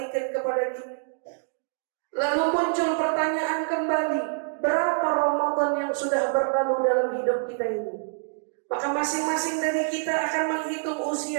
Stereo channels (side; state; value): left; silent; digital silence